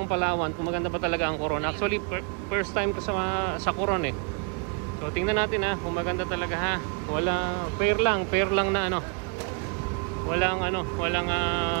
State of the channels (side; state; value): left; quieter; 37.6 dB